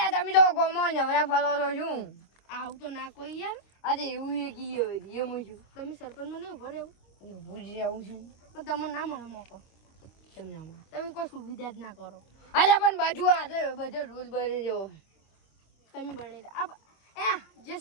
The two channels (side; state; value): right; late; 25 ms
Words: તમે તો કોમો નવરા ફલો છો શું આવું તો ના કોઈ યાર અરે એવું એ કીએ એમ છું તમે સરપંચમાં નહીં ઉભો રહેવું ભૂજ આવું છું પણ તમને ના મળે મોકો કેમ ના મળે તમે કોઈ સુવિધા જ ના કરો અરે પણ બાજુ આટલે બધે રૂલ બને જેવો તમે બની જે